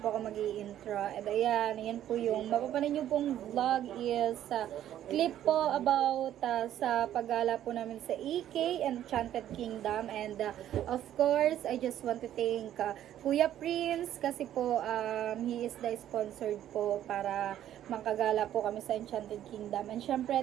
ako mag-i-intro. And ayan po yung mapapanood nyo pong vlog is clip po about sa paggala po namin sa EK Enchanted Kingdom. And of course, I just want to thank Kuya Prince kasi po he is the sponsored po para makagala po kami sa Enchanted Kingdom. And syempre,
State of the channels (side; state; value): left; quieter; 11.6 dB